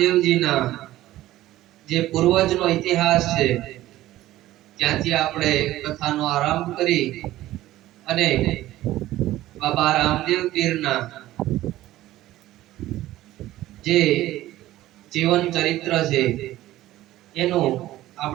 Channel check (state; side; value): quieter; left; 15.3 dB